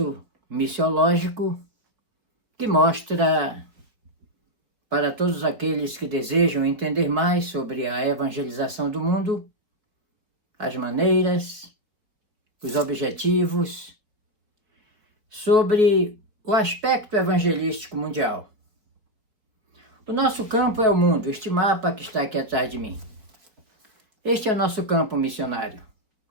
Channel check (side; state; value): left; late; 4.4 ms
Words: missiológico que mostra para todos aqueles que desejam entender mais sobre a evangelização do mundo, as maneiras, os objetivos, sobre o aspecto evangelístico mundial. O nosso campo é o mundo, este mapa que está aqui atrás de mim. Este é o nosso campo missionário.